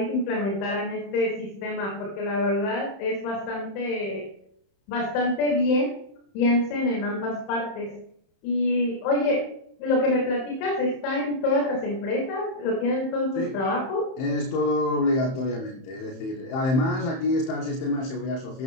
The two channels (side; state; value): right; late; 31 ms